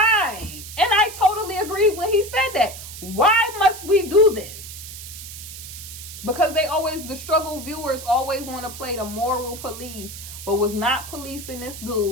And I totally agree when he said that. Why must we do this? Because the struggle viewers always want to play the moral police, but was not policing this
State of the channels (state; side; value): noise; right; hiss, 12 dB below the sound